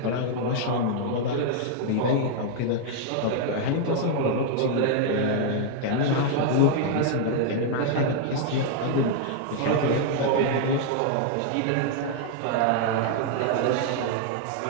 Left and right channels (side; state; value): both; different; correlation 0.00